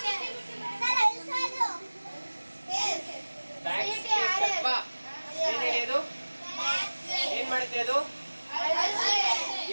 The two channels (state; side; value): inverted; both; correlation -1.00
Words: ಏನ್ ಮಾಡುತ್ತೆ ಅದು?